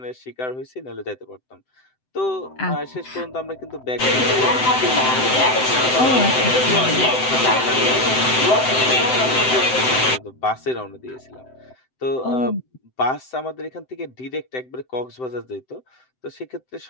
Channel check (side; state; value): right; late; 7.8 ms